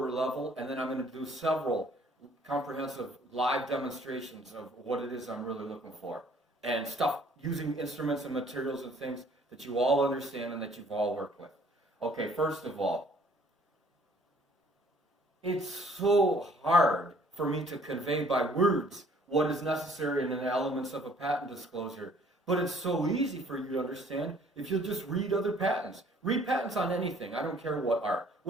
level, and then I'm going to do several comprehensive live demonstrations of what it is I'm really looking for. And stuff using instruments and materials and things that you all understand and that you've all worked with. Okay, first of all, it's so hard for me to convey by words what is necessary in the elements of a patent disclosure. But it's so easy for you to understand if you'll just read other patents. Read patents on anything. I don't care what are.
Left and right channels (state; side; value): normal; both; correlation 0.58